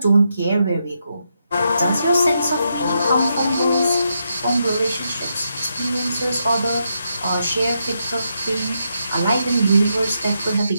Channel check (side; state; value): both; inverted; correlation -0.82